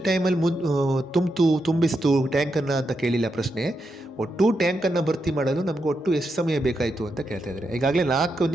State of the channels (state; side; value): normal; both; correlation 0.84